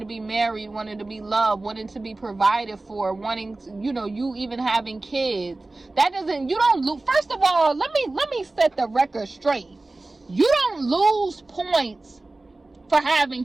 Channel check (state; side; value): quieter; left; 3.0 dB